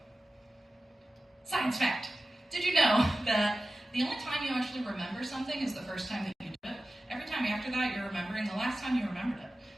science fact. Did you know that the only time you actually remember something is the first time that you do it? Every time after that, you're remembering the last time you remembered it.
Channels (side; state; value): both; normal; correlation 0.95